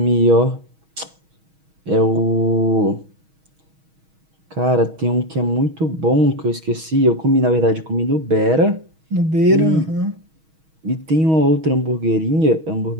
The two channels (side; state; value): left; late; 6.3 ms